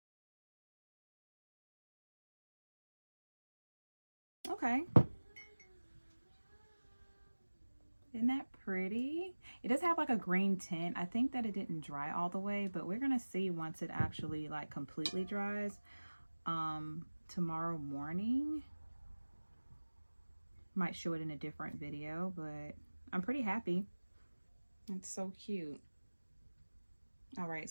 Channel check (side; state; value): both; inverted; correlation -1.00